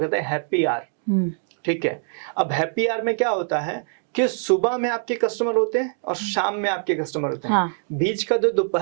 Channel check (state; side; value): silent; left; 63 dB below the other